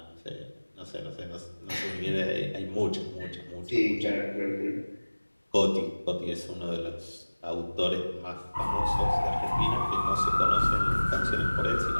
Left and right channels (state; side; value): inverted; both; correlation -1.00